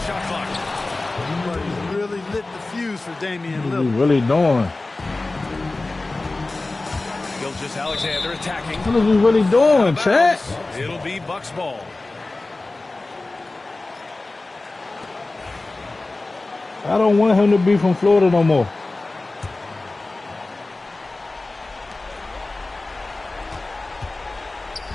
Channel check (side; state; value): right; quieter; 3.1 dB